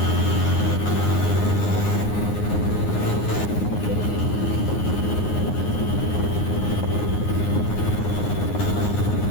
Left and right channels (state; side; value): late; right; 9.6 ms